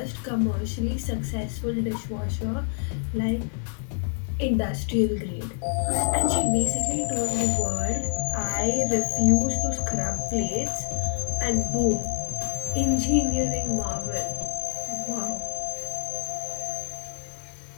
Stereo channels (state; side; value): silent; right; 60 dB below the other